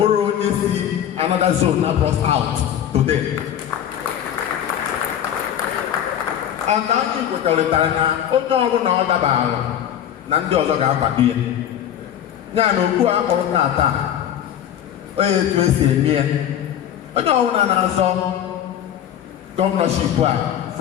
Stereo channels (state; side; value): quieter; right; 10.2 dB